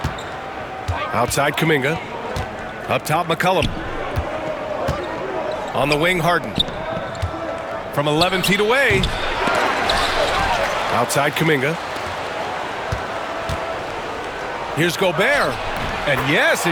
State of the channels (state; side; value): identical; both; correlation 1.00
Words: Outside Kuminga. Up top McCollum. On the wing Harden. From 11 feet away. Outside Kuminga. Here's Gobert. And yes,